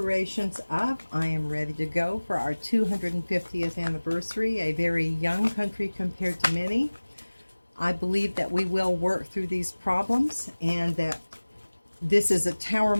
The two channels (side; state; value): both; inverted; correlation -1.00